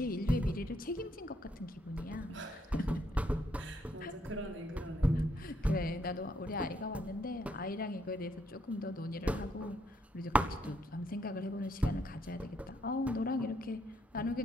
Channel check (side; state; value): both; normal; correlation 0.73